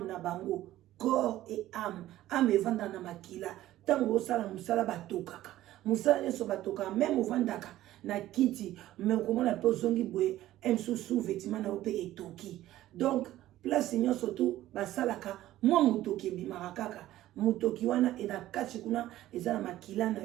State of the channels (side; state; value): left; quieter; 14.5 dB